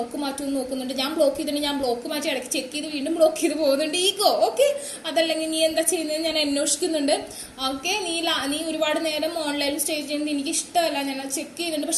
മാറ്റുമെന്ന് നോക്കുന്നുണ്ട്, ഞാൻ ബ്ലോക്ക് ചെയ്തിട്ടുണ്ടെങ്കിൽ ഞാൻ ബ്ലോക്ക് മാറ്റി ഇടയ്ക്ക് ചെക്ക് ചെയ്ത് വീണ്ടും ബ്ലോക്ക് ചെയ്ത് പോകുന്നുണ്ട്. ഈഗോ. ഓക്കെ, അതല്ലെങ്കിൽ നീ എന്താ ചെയ്യുന്നത് ഞാൻ അന്വേഷിക്കുന്നുണ്ട്. ഓക്കെ, നീ ഒരുപാട് നേരം ഓൺലൈനിൽ സ്റ്റേ ചെയ്യുന്നത് എനിക്ക് ഇഷ്ടമല്ല, ഞാൻ അത് ചെക്ക് ചെയ്യുന്നുണ്ട്,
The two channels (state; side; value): identical; both; correlation 1.00